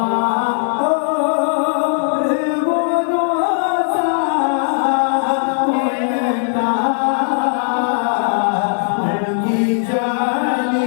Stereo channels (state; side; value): silent; right; 67 dB below the other